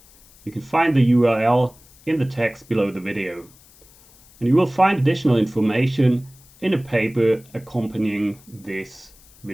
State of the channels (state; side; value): noise; left; hiss, 27 dB below the sound